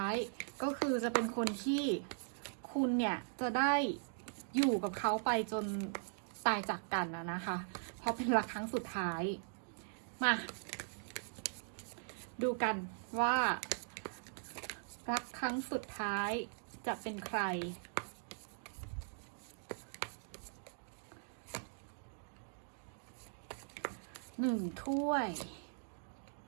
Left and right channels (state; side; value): silent; left; digital silence